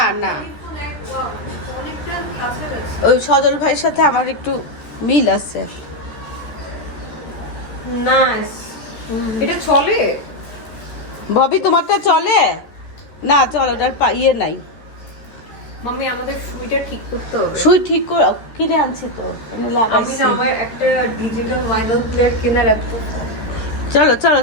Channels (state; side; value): late; right; 13 ms